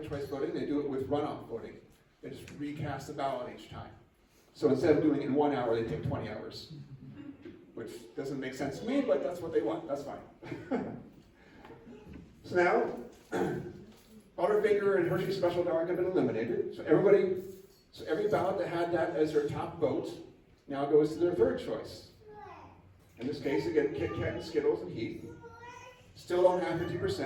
choice voting, they do it with runoff voting. They just recast the ballot each time. So instead of doing it in 1 hour, they take 20 hours. Which doesn't make sense to me, but that's what they want, that's fine. So now, Butterfinger and Hershey Special Dark have been eliminated. So every ballot that had that as their top vote now goes to their third choice. In this case, again, Kit Kat and Skittles and Heath. Still don't have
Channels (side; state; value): both; identical; correlation 1.00